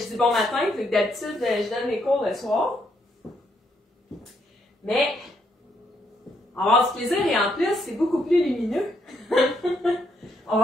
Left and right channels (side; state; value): both; normal; correlation 0.75